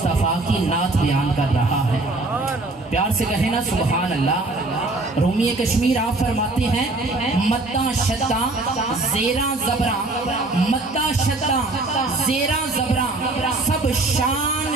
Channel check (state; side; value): quieter; left; 3.0 dB